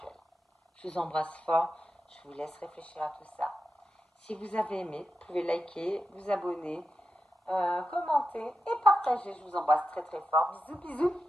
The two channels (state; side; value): normal; both; correlation 0.89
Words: Je vous embrasse fort. Je vous laisse réfléchir à tout ça. Si vous avez aimé, vous pouvez liker, vous abonner, commenter et partager. Je vous embrasse très très fort. Bisous, bisous.